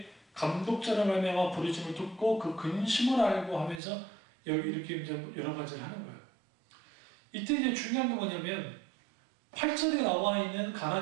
감독자를 말미암아 부르심을 듣고 그 근심을 알고 하면서 여기 이렇게 이제 여러 가지를 하는 거예요. 이때 이제 중요한 게 뭐냐면 8절에 나와 있는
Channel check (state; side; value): drops out; left; at 3.8 s